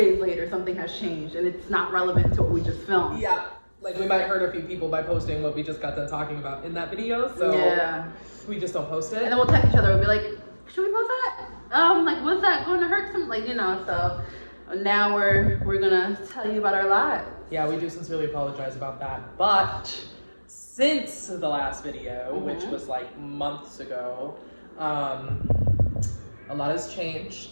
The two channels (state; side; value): inverted; both; correlation -1.00